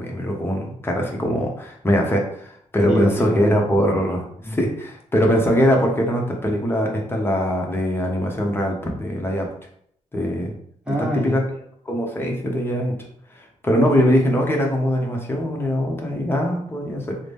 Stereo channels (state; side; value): normal; both; correlation 0.76